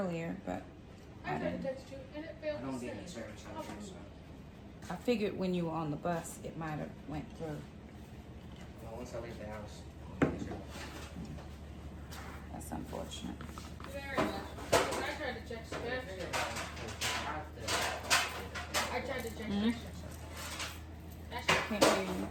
but I tried to text you and it I failed don't to get any send. service out here, so. I figured when you were on the bus, it might have went through. Well, once I leave the house, That's unfortunate. Very much. tried to check SketchUp. I tried to check Mhm. SketchUp. Can't hear you.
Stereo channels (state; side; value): identical; both; correlation 1.00